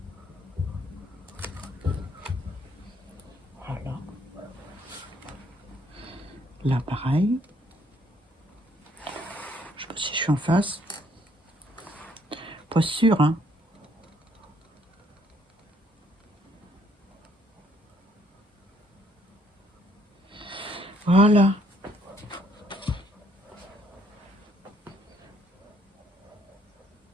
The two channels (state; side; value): normal; both; correlation 0.67